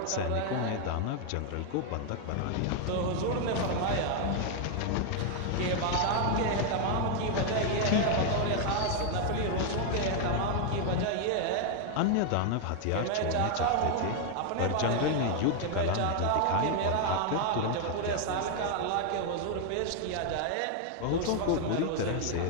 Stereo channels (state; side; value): different; both; correlation 0.00